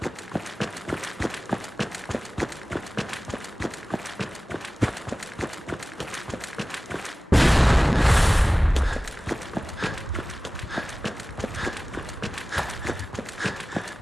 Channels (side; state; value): both; normal; correlation 0.97